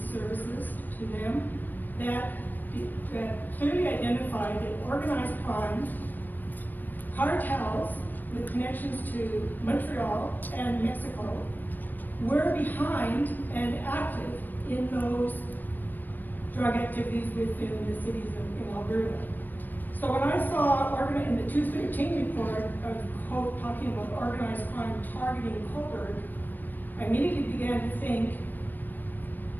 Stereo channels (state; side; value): late; right; 0.087 ms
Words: services to them that clearly identified that organized crime, cartels with connections to Montreal and Mexico were behind and active in those drug activities within the cities in Alberta. So when I saw in the 213 report, quote, talking about organized crime targeting Cobourg, I immediately began to think,